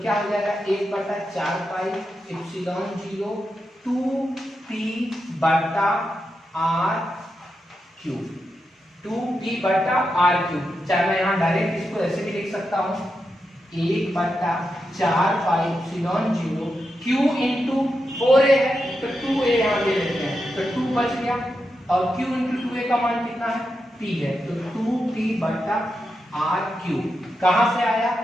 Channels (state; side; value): normal; both; correlation 0.87